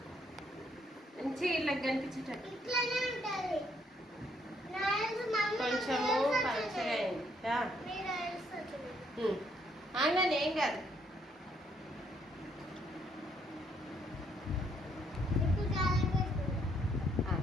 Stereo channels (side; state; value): both; normal; correlation 0.70